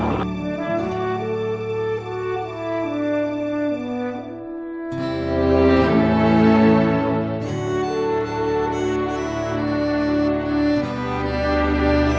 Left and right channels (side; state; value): both; identical; correlation 1.00